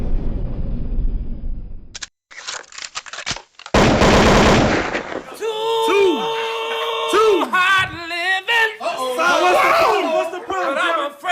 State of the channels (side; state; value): both; identical; correlation 1.00